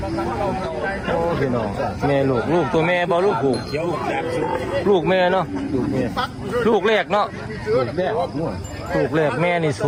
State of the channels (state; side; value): identical; both; correlation 1.00